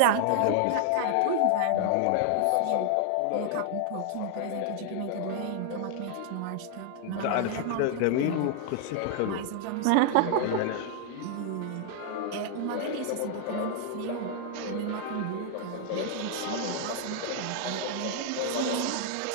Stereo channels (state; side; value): different; both; correlation 0.00